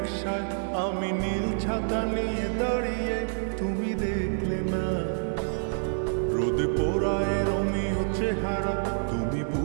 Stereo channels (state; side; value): silent; left; 60 dB below the other